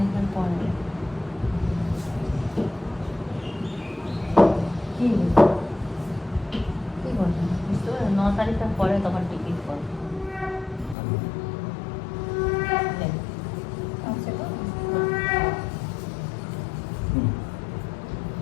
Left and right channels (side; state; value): right; drops out; at 11.0 s